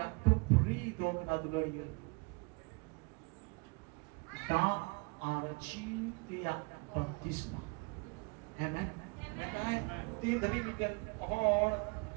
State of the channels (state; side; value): quieter; left; 30.1 dB